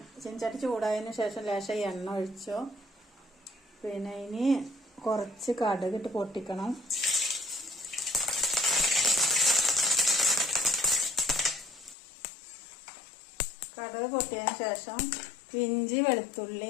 ചീനച്ചട്ടി ചൂടായതിനു ശേഷം ലേശം എണ്ണ ഒഴിച്ചു. പിന്നെ ഇനി കുറച്ച് കടുകിട്ട് പൊട്ടിക്കണം. കടുക് പൊട്ടിയതിന് ശേഷം ഇഞ്ചി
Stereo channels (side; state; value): right; drops out; at 12.0 s